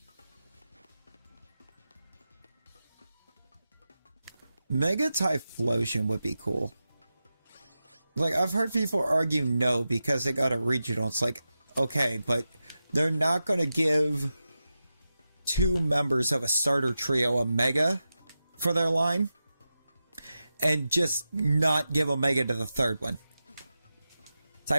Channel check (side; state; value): both; inverted; correlation -0.92